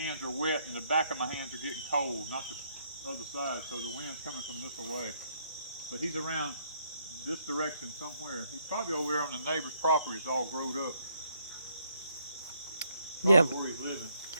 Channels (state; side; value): inverted; both; correlation -0.72